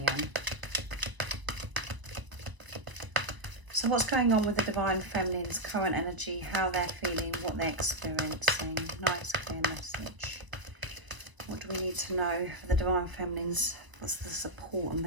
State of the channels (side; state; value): left; late; 1.0 ms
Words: So what's going on with the divine feminine's current energy, how they're feeling, what they're experiencing? Nice clear message. What do we need to know for the divine feminines? What's the support and the